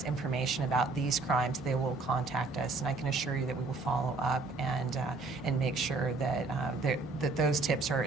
information about these crimes, they will contact us. And I can assure you that we will follow up and make sure that, that those tips are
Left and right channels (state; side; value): quieter; left; 3.8 dB